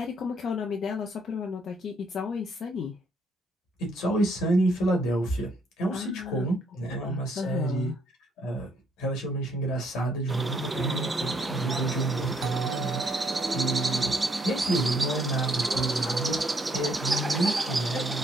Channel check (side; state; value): both; normal; correlation 0.69